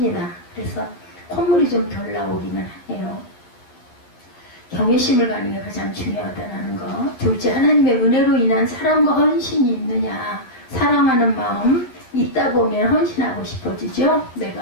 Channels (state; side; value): late; right; 11 ms